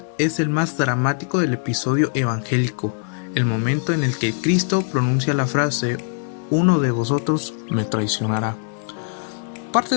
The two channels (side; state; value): right; silent; 65 dB below the other